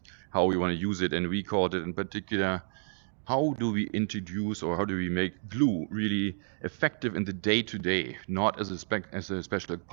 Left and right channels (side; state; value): left; silent; digital silence